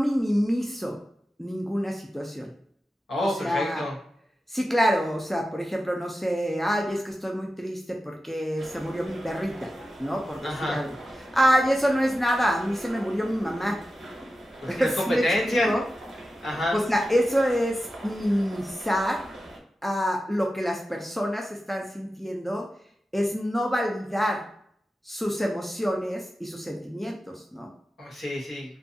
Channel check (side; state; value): both; normal; correlation 0.93